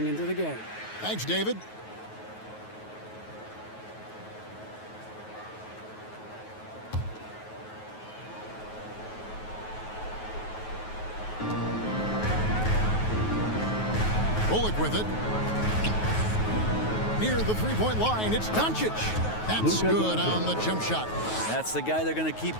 into the game. Thanks, David. Bullock with it. Near the three-point line, it's Doncic. That's good on the jump shot. That's the guy they're going to keep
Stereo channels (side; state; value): right; late; 9.3 ms